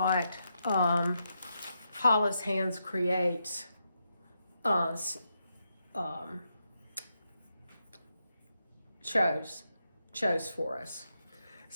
Hollis Hands creates chose for us.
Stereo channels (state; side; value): inverted; both; correlation -0.84